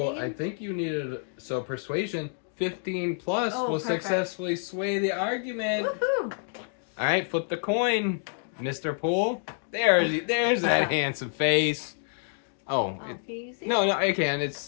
I need? I think you needed... So persuasion, 15 plus will perfect. successfully sway the argument. Woohoo! Alright, flip the coin, Mr. Poole. There's that handsome face. Oh, no, I can. It's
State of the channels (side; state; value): right; silent; 59 dB below the other